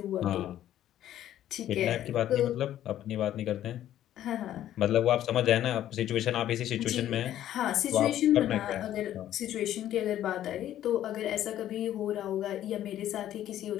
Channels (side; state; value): right; quieter; 12.1 dB